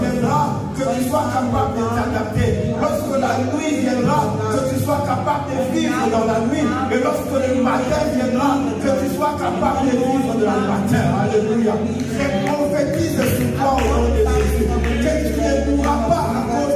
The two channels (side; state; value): both; identical; correlation 1.00